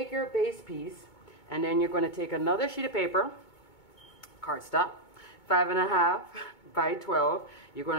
your base piece and then you're going to take another sheet of paper, cardstock, 5.5 by 12. You're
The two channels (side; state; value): right; late; 2.2 ms